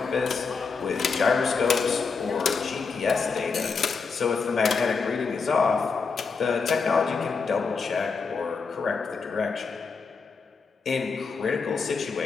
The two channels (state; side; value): quieter; right; 5.0 dB